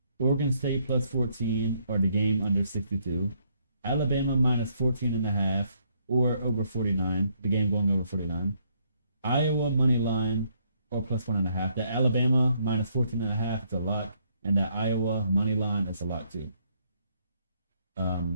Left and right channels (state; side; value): inverted; both; correlation -0.71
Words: Oregon State +14, or the game under 62. Alabama -14.5, or over 49. The game going over 49. Iowa money line, or +1.5. The Alabama -14.5 is a lot. And that Iowa money line is a lot too.